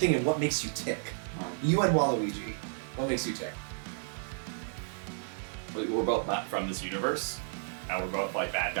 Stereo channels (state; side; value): silent; left; digital silence